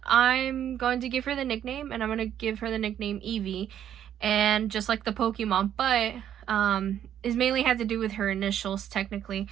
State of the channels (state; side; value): quieter; left; 10.2 dB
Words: I'm going to give her the nickname, and I'm going to give her the nickname Evie, and just like the Pokemon, but it mainly had to do with her initials technically,